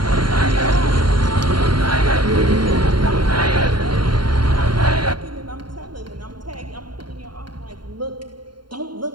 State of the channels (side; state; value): left; late; 0.72 ms